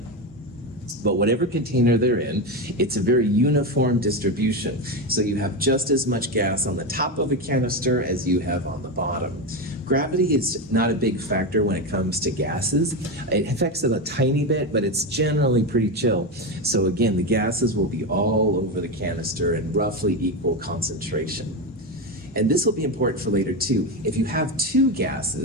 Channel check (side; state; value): both; normal; correlation 0.14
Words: But whatever container they're in, it's a very uniform distribution. So you have just as much gas on the top of a canister as you have on the bottom. Gravity is not a big factor when it comes to gases. It affects it a tiny bit, but it's generally pretty chill. So again, the gases will be all over the canister in roughly equal concentration. And this will be important for later too. If you have 2